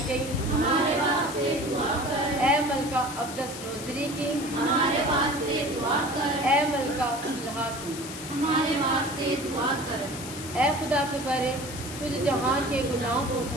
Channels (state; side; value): noise; left; hiss, 11 dB below the sound